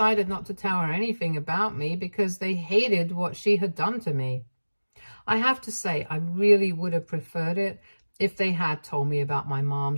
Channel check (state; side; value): inverted; both; correlation -1.00